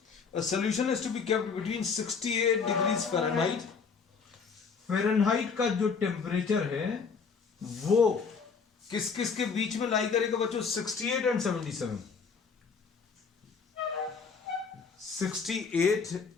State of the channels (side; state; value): right; quieter; 5.5 dB